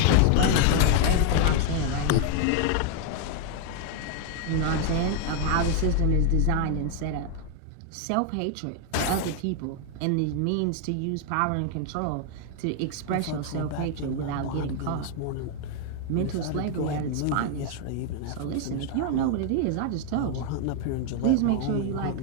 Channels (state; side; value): different; both; correlation 0.00